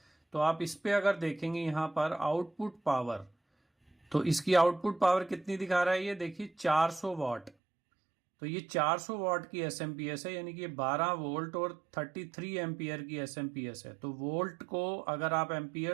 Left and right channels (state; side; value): drops out; left; at 7.5 s